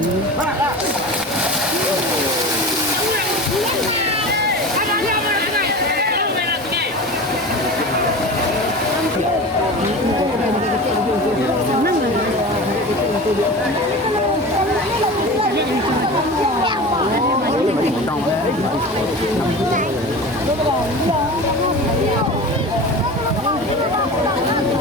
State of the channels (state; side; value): normal; both; correlation 0.32